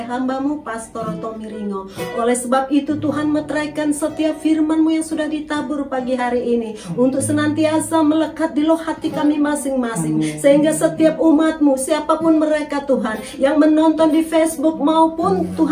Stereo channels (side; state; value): both; identical; correlation 1.00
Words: hamba-Mu Pastor Tommy Ringo. Oleh sebab itu Tuhan, meteraikan setiap firman-Mu yang sudah ditabur pagi hari ini untuk senantiasa melekat di loh hati kami masing-masing. Sehingga setiap umat-Mu, siapapun mereka Tuhan, yang menonton di Facebook maupun